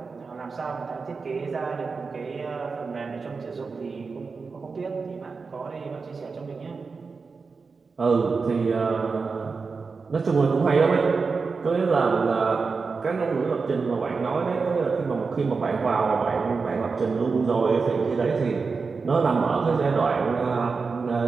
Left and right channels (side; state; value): left; quieter; 4.7 dB